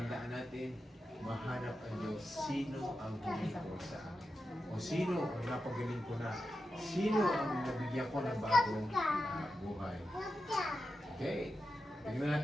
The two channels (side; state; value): both; normal; correlation 0.90